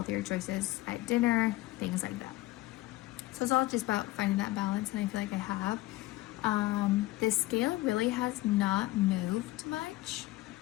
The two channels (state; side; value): quieter; right; 18.3 dB